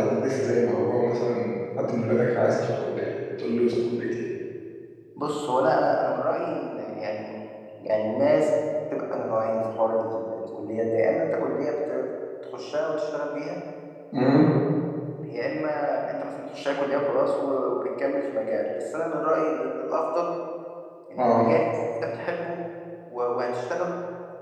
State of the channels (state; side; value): identical; both; correlation 1.00